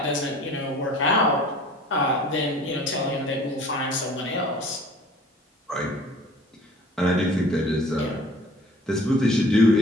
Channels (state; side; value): normal; both; correlation 0.48